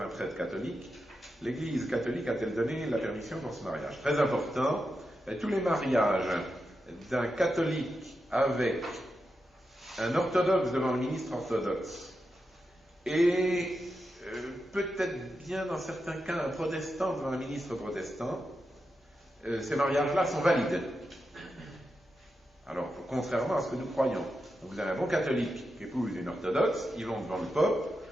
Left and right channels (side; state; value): both; normal; correlation 0.88